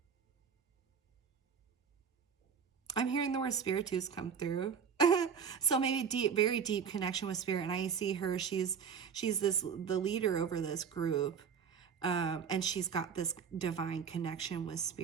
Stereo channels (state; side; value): quieter; left; 6.9 dB